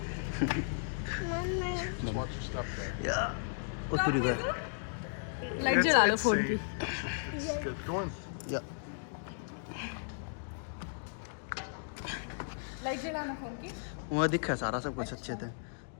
Just watch your step there. या उतरी गए लाइट जला लो फोन की Good. Go in. या लाइट जलाना फोन की वहाँ दिखा सारा सब कुछ अच्छे थे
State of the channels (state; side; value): silent; right; digital silence